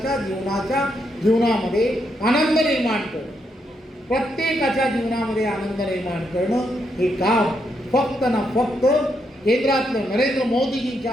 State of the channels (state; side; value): normal; both; correlation 0.79